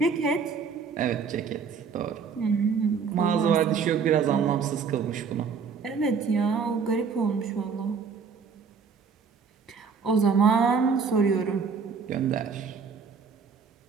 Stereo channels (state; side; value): quieter; left; 5.8 dB